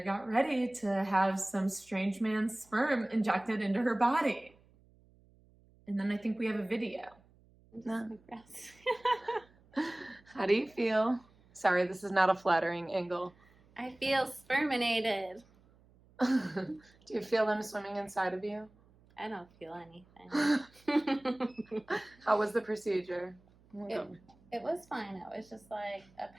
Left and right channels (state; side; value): noise; right; hum, 29 dB below the sound